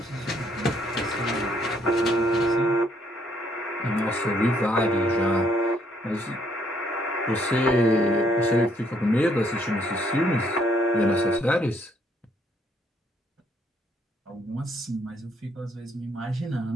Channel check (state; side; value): normal; both; correlation 0.68